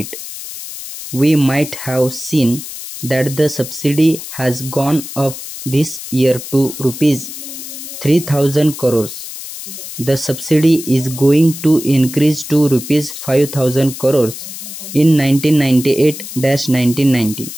We might have seen that the subsidy has gone up this year to rupees 3,000 crores. The subsidy is going to increase to rupees 5,000 crores in 1998-1990.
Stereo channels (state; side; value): noise; left; hiss, 11 dB below the sound